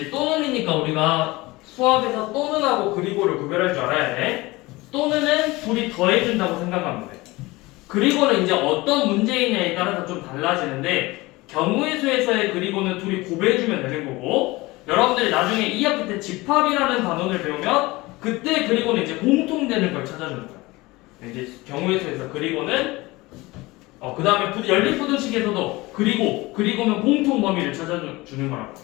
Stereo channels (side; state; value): right; quieter; 21.4 dB